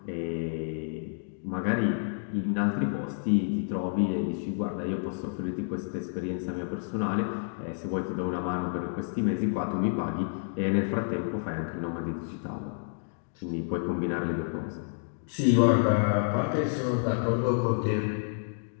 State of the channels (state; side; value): silent; right; digital silence